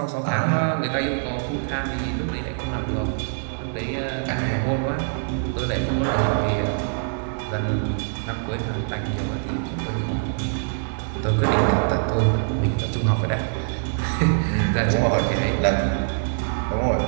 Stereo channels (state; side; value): silent; left; digital silence